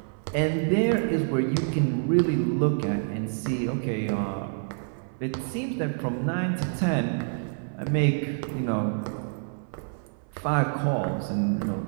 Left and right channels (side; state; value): left; silent; 60 dB below the other